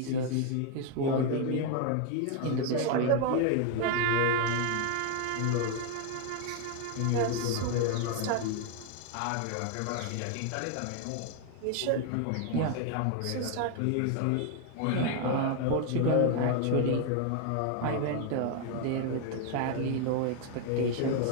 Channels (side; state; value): both; different; correlation 0.01